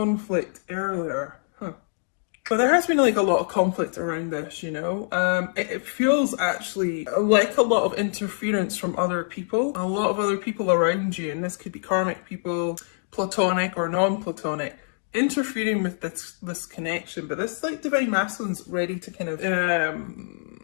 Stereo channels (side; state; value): right; silent; digital silence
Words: earlier. But there has been like a lot of conflict around this, you know. It feels actually like a lot of interference from other people. A lot of other people around you, and this could be karmic people, platonic or non-platonic, interfering with this connection. But this like divine masculine's ready to kind of